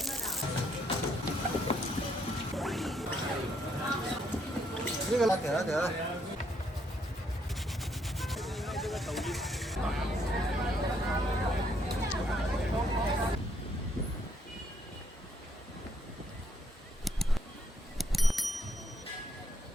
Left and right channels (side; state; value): both; normal; correlation 0.72